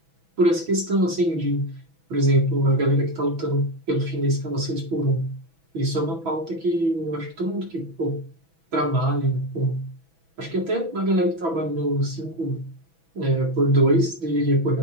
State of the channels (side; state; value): left; late; 6.1 ms